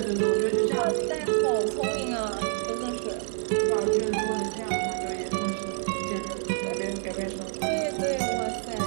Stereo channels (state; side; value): silent; left; digital silence